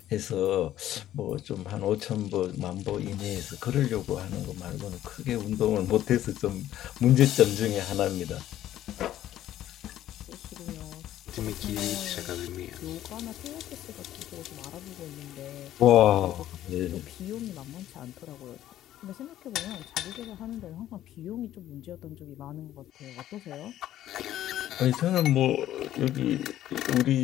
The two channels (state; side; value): quieter; right; 12.7 dB